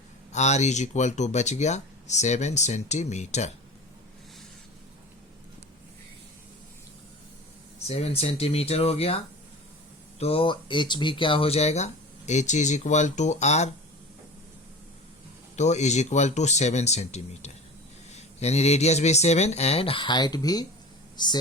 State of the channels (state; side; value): normal; both; correlation 0.34